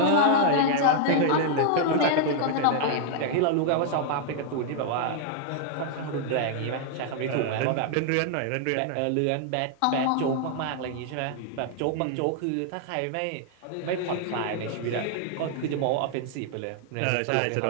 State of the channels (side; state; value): both; different; correlation 0.00